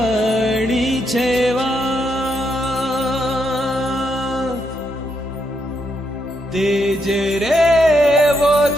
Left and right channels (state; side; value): normal; both; correlation 0.79